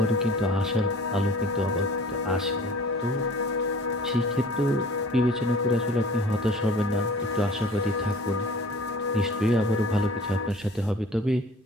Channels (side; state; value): both; normal; correlation 0.46